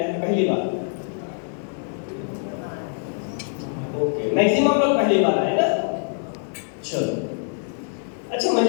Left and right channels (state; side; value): silent; right; digital silence